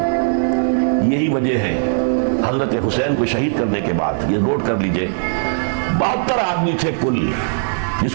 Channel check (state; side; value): silent; left; digital silence